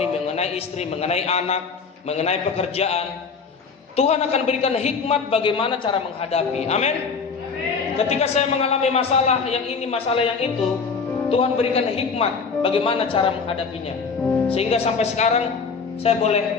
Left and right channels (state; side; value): quieter; right; 5.2 dB